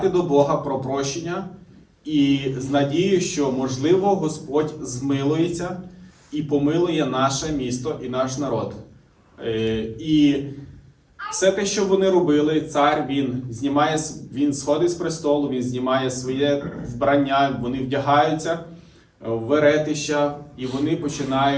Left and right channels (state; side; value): identical; both; correlation 1.00